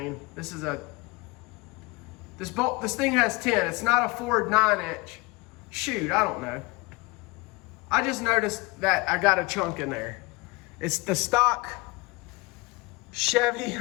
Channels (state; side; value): quieter; right; 24.7 dB